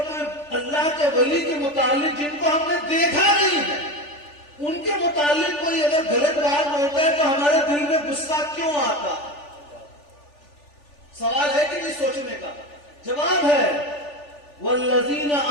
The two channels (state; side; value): late; right; 3.4 ms